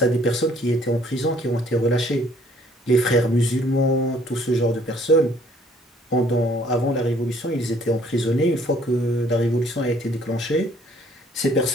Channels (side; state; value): both; normal; correlation 0.61